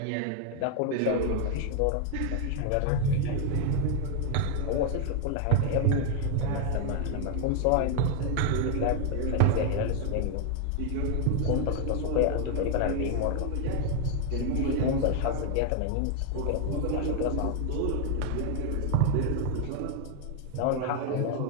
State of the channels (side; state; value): both; different; correlation 0.00